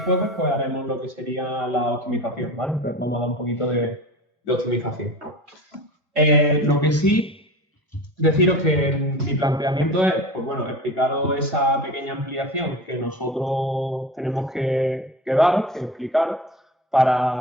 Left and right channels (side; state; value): both; normal; correlation 0.33